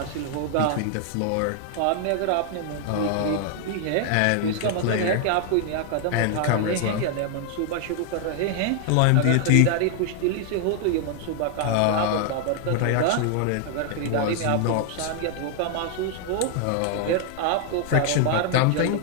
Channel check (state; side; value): different; both; correlation 0.00